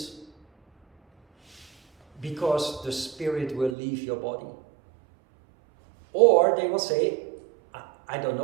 because the spirit will leave your body. Or they will say, I don't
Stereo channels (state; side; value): drops out; left; at 3.8 s